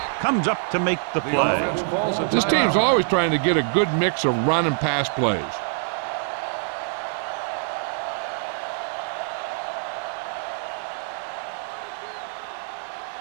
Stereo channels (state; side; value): silent; left; 62 dB below the other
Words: comes up to make the play. This team's always trying to get a good mix of run and pass plays.